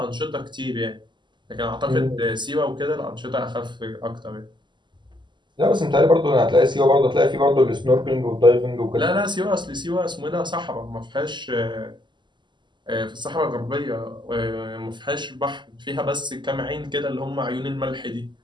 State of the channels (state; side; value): late; left; 0.22 ms